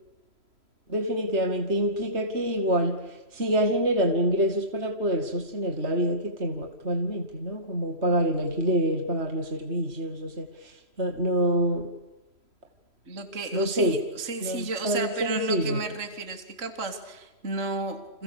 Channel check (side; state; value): left; late; 3.0 ms